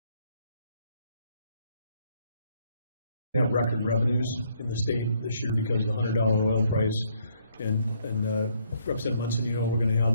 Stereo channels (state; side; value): inverted; both; correlation -0.69